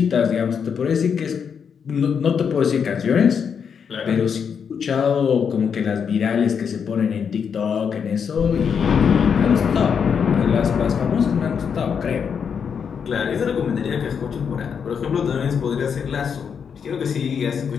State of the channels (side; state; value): right; quieter; 6.9 dB